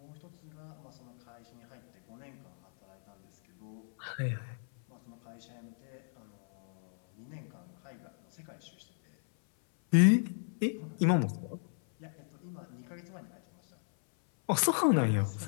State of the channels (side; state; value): right; silent; 55 dB below the other